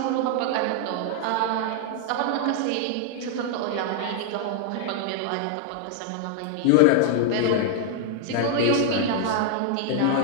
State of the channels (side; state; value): both; different; correlation 0.00